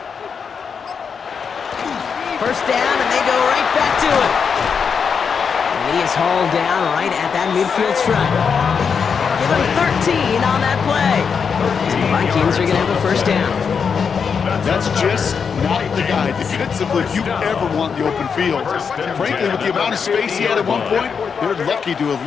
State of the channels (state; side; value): quieter; right; 6.2 dB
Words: First down, and they go right back to it. And he is hauled down right at that midfield stripe. Give him 13 on that play. And the Vikings are going to have a first down. That's just not the guy defensively you ever want in the open field. Frankly, with the amount of space he had at one point, they're lucky to have